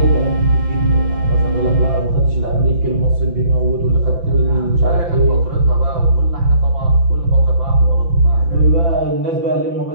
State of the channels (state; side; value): late; left; 5.9 ms